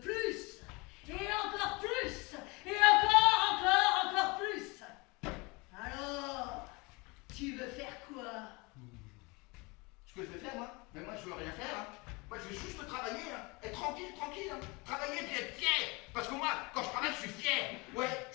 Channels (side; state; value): right; quieter; 26.6 dB